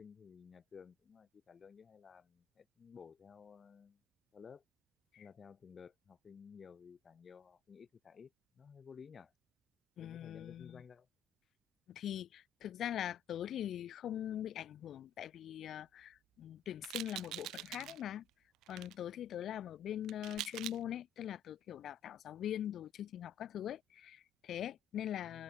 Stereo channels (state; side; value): quieter; right; 7.5 dB